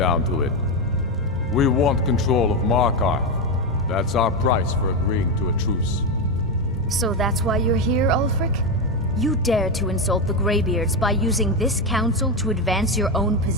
to it. We want control of Markarth. That's our price for agreeing to a truce. So that's why you're here, Ulfric? You dare to insult the Greybeards by using this council to advance your own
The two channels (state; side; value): normal; both; correlation 0.10